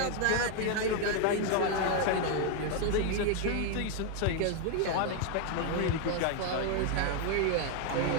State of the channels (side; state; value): both; different; correlation 0.01